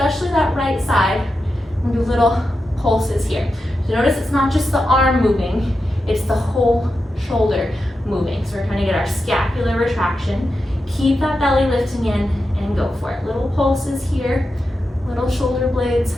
that right side, and do little pulses here. So notice it's not just the arm moving, it's the whole shoulder moving. So we're trying to get our scapular retraction. Keep that belly lifting in and go for it. Little pulses here, little shoulder blades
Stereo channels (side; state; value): both; normal; correlation 0.89